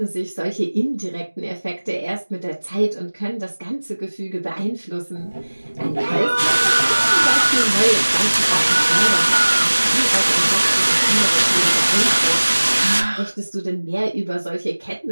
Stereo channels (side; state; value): both; inverted; correlation -1.00